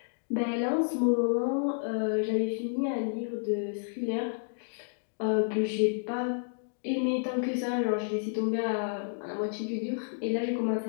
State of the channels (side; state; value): right; silent; digital silence